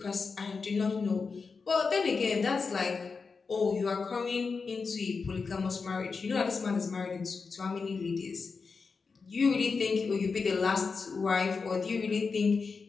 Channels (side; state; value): right; quieter; 4.8 dB